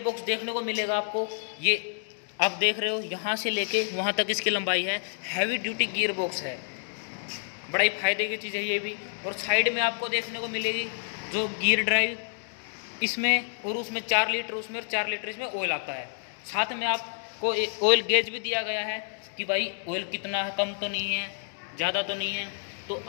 देखने को मिलेगा आपको, ये आप देख रहे हो यहाँ से लेके वहाँ तक इसकी लंबाई है। हैवी ड्यूटी गियर बॉक्स है, बड़ा ही फायदे की चीज़ है ये भी। और साइड में आपको देखने को मिलेगी जो गियर ड्राइव, इसमें और उसमें 4 लीटर उसमें और 4 लीटर इसमें ऑयल आता है। साथ में आपको ऑयल गेज भी दिया गया है कि भाई ऑयल कितना है, कम तो नहीं है, ज़्यादा तो नहीं है। तो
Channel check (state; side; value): silent; right; digital silence